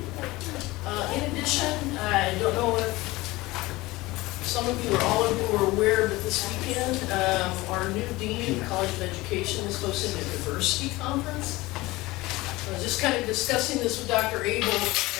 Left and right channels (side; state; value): right; quieter; 20.2 dB